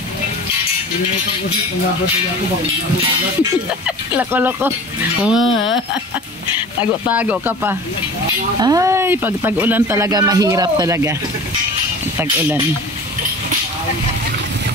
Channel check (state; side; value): normal; both; correlation 0.39